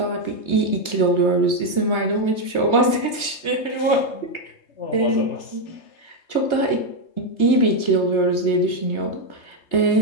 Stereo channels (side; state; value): right; late; 3.3 ms